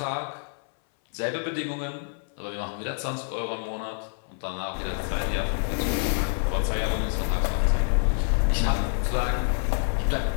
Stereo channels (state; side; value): silent; right; 60 dB below the other